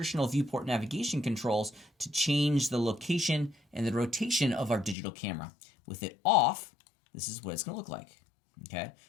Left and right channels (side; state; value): right; drops out; at 5.0 s